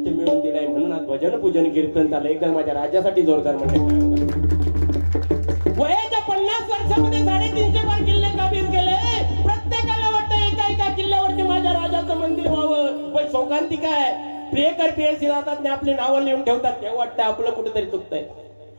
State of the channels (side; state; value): both; inverted; correlation -1.00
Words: मिळवून दिलाय म्हणून आज भजन पूजन कीर्तन चाललं. एकदा माझ्या राज्यासाठी जोरदार म्हणजे वयाच्या 50 वर्षामध्ये 350 बार किल्ले काबीज केले. प्रत्येकाला वाटतं एका एका किल्ल्यावरती माझ्या राजाचं मंदिर व्हावं. पण शोकांती काय, प्रियकर प्रियसी राहतात आपली नावं लिहून ठेवतात. तेव्हा वाटतं आपलं कुठेतरी चुकतंय.